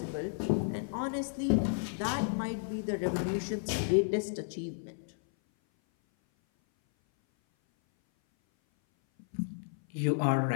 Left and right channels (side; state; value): right; silent; 56 dB below the other